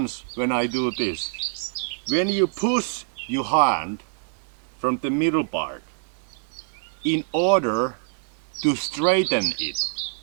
when I do this. When you push your hand from the middle part in order to straighten it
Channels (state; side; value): silent; left; 62 dB below the other